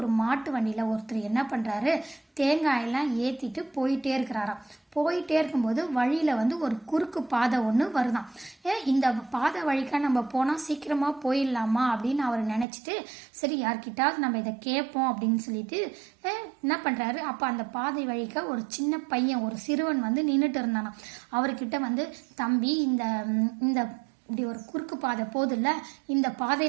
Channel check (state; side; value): drops out; left; at 12.7 s